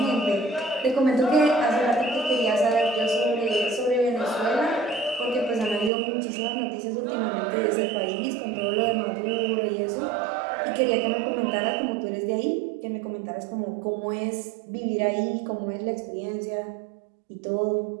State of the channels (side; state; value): left; drops out; at 5.9 s